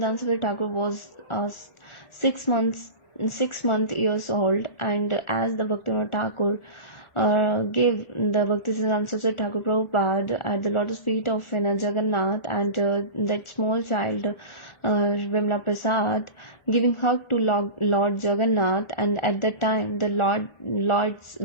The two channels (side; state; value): right; late; 1.4 ms